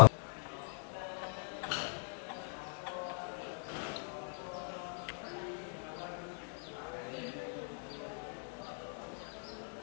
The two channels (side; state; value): right; silent; 51 dB below the other